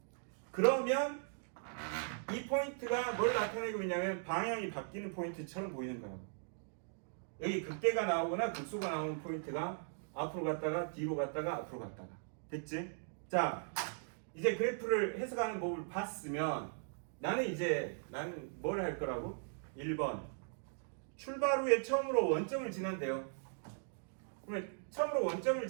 그러면 이 포인트가 뭘 나타내고 있냐면 방향이 바뀌는 포인트처럼 보이는 거라고. 여기 극대가 나오거나 극소가 나오는 포인트가 앞으로 갔다가 뒤로 갔다가 앞으로 갔다가. 됐지? 자, 이제 그래프를 해석하는 법을 봤으면 나는 뭘 할 거라고? 1번 출발 후에 처음으로 원점을 지난대요. 그러면 처음으로 원점을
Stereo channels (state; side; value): silent; left; digital silence